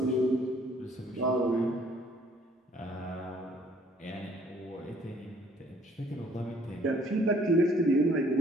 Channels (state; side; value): normal; both; correlation 0.60